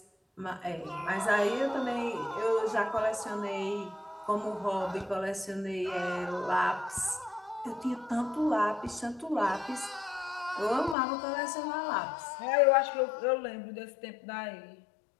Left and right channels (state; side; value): drops out; right; at 11.0 s